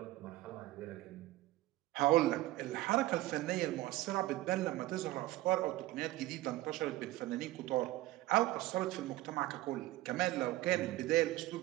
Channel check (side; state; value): left; quieter; 17.0 dB